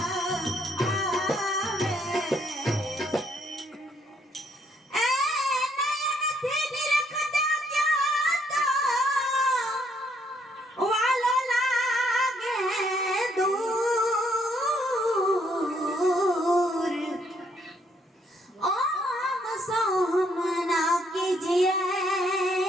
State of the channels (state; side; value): normal; both; correlation 0.70